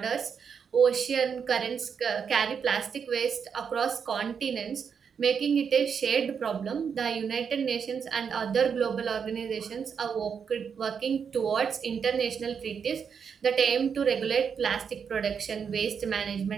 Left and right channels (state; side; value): quieter; left; 6.7 dB